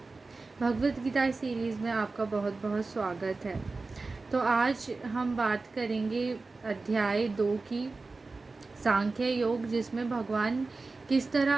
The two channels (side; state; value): left; quieter; 3.7 dB